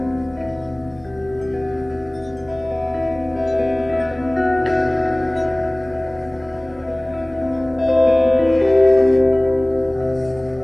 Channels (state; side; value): noise; right; hum, 28 dB below the sound